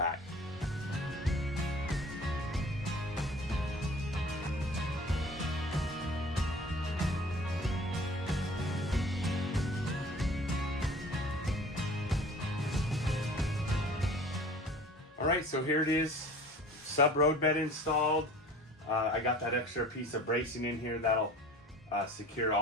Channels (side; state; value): both; normal; correlation 0.44